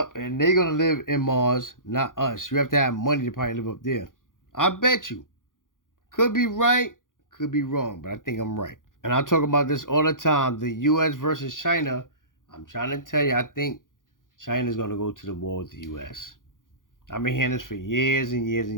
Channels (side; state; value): right; late; 0.89 ms